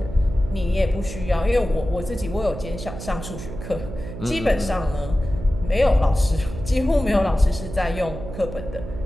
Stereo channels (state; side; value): noise; right; hum, 10 dB below the sound